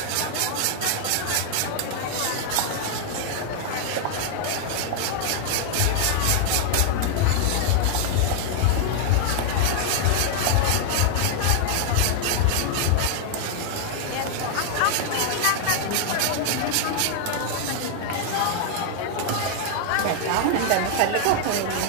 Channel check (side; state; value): both; different; correlation 0.00